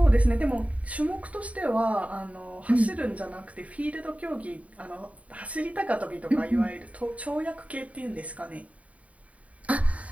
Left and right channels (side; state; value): left; late; 0.067 ms